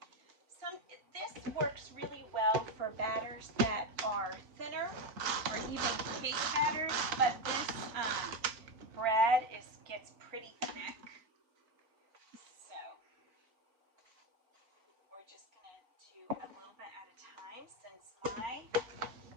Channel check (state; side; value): late; left; 4.4 ms